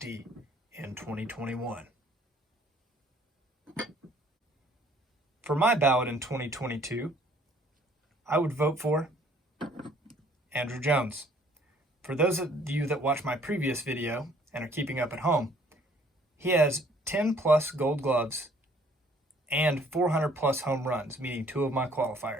in 2021. For my ballot in 2022, I would vote for Andrew Jones. For those of you that watched my previous video and are keeping up at home, he has 10 plus gold gloves and 400 plus home runs, meeting 2 of my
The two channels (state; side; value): normal; both; correlation 0.60